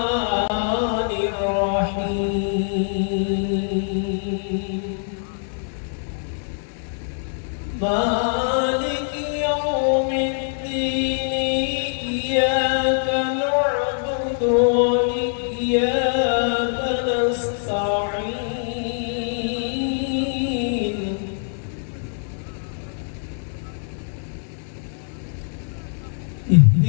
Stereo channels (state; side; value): silent; right; digital silence